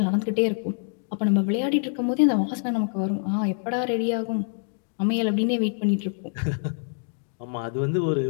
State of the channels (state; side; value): silent; right; 61 dB below the other